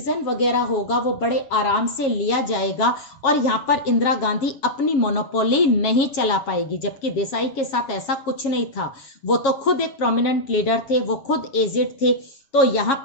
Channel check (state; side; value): late; right; 7.4 ms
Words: वगैरह होगा वो बड़े आराम से लिया जाएगा और यहाँ पर इंदिरा गांधी अपनी मोनोपोली नहीं चला पाएगी, जबकि देसाई के साथ ऐसा कुछ नहीं था। वो तो खुद एक प्रोमिनेंट लीडर थे, वो खुद एजेड थे, तो यहाँ